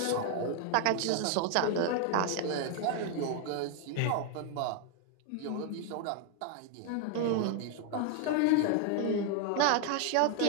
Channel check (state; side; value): different; both; correlation 0.00